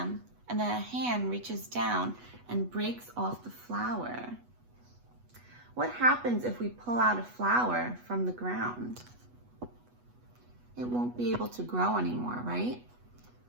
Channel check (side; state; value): left; late; 8.2 ms